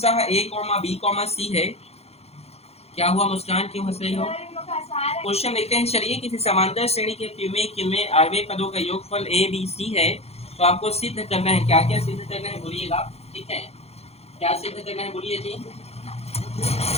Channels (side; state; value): right; late; 0.30 ms